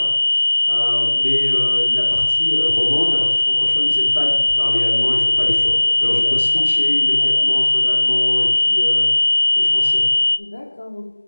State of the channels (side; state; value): both; inverted; correlation -1.00